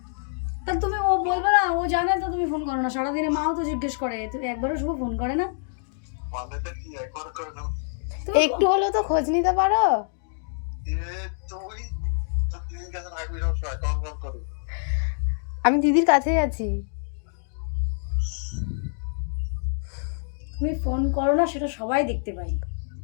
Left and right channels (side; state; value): right; silent; digital silence